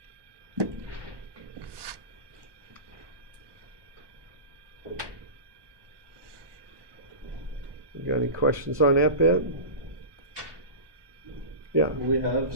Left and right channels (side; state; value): left; late; 1.2 ms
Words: You got any questions on that bit? Yeah. Will we have